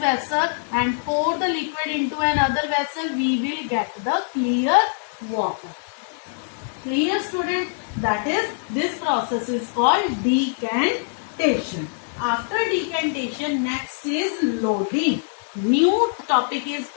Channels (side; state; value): right; silent; digital silence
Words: and pour the liquid into another vessel. We will get the clear water. Clear, student? That is, this process is called decantation. After decantation, next is loading. new topic is